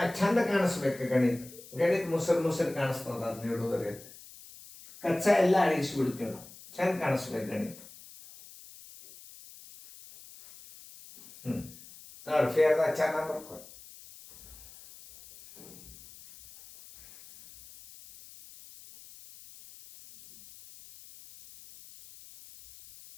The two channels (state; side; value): noise; left; hiss, 19 dB below the sound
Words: ಚಂದ ಕಾಣಿಸ್ಬೇಕು. ಗಣಿತ ಮುಸರು ಕಾಣಿಸ್ತದ. ಅದು ನೀಡೋದ್ರಿ ಕಚ್ಚಾ ಎಲ್ಲ ಅಳಿಸ್ಬಿಡ್ತೀವಿ ನಾವು. ಚಂದ ಕಾಣಿಸ್ಬೇಕು ಗಣಿತ. ನೋಡಿ ಫೇರ್ದಾಗ ಚೆನ್ನಾಗಿ ಬರ್ಕೊಂಡು